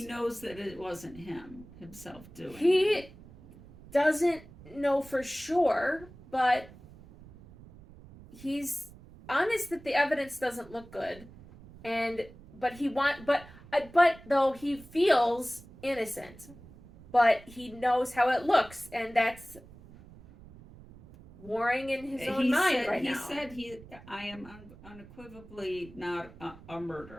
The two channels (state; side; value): noise; right; rumble, 20 dB below the sound